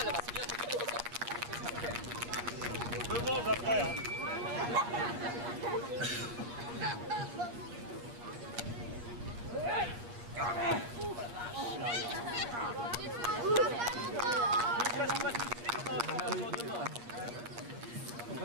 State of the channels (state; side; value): late; left; 8.5 ms